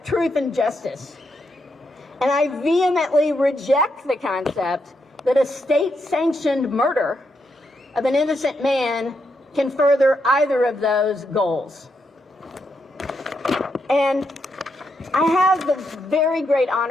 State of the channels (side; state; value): both; normal; correlation 0.81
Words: truth and justice. And I vehemently reject the concept that a state-sanctioned murder of an innocent man can further either of those goals. And I have the very great